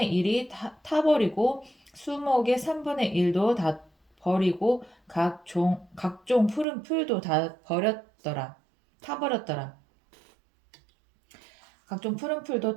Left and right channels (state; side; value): drops out; left; at 6.7 s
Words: 1이 타버리고 수목의 3분의 1도 다 버리고 각종 푸른 풀도 다 타버렸더라. 각종 푸른